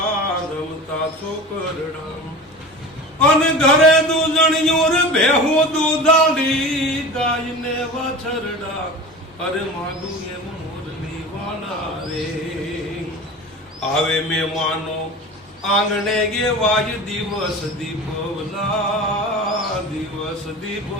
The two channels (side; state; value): both; normal; correlation 0.34